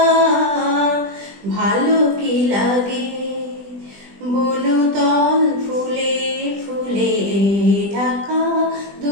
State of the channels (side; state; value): left; late; 20 ms